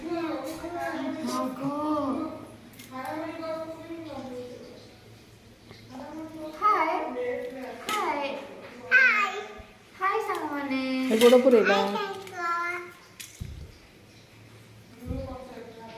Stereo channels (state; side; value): identical; both; correlation 1.00